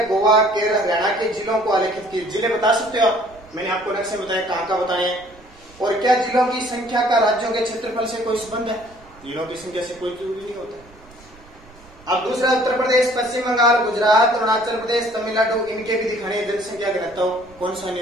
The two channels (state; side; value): noise; right; rumble, 25 dB below the sound